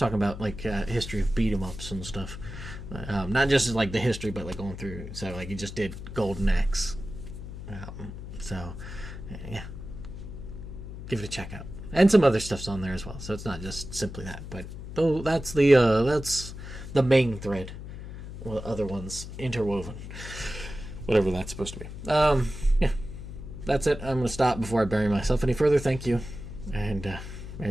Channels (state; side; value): noise; left; hum, 10 dB below the sound